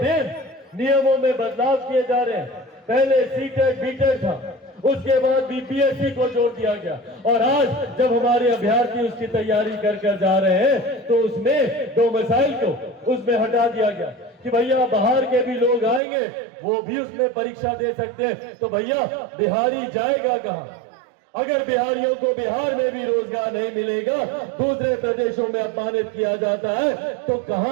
नियमों में बदलाव किए जा रहे हैं। पहले सीटेट बीटेट था, उसके बाद बीपीएससी को जोड़ दिया गया, और आज जब हमारे अभ्यर्थी उसकी तैयारी कर जा रहे हैं तो उसमें डोमिसाइल को उसमें हटा दिया गया कि भैया बाहर के भी लोग आएंगे, वो भी उसमें परीक्षा दे सकते हैं। तो भैया बिहारी जाएगा कहां? अगर बिहारियों को बिहार में भी रोजगार नहीं मिलेगा, दूसरे प्रदेशों में अपमानित किया जाता है, तो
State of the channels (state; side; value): drops out; left; at 16.0 s